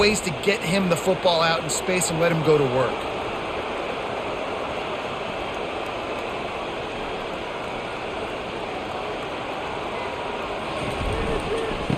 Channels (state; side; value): identical; both; correlation 1.00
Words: to get him the football out in space and let him go to work.